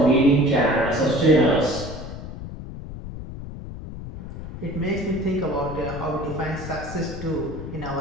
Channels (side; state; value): left; noise; rumble, 10 dB below the sound